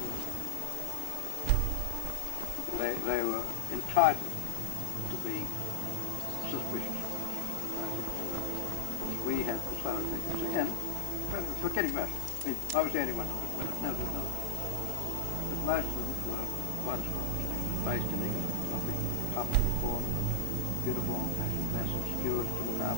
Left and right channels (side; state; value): both; different; correlation 0.00